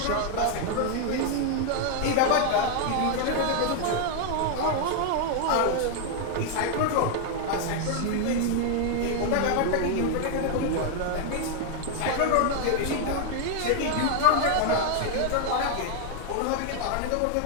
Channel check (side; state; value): both; different; correlation 0.00